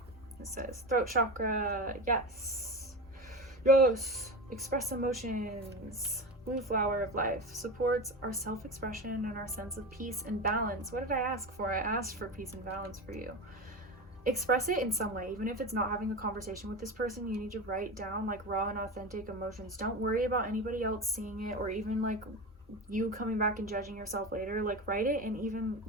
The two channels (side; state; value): both; normal; correlation 0.25